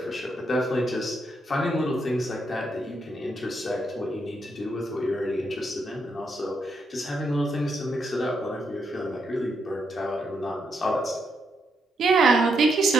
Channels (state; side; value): normal; both; correlation 0.79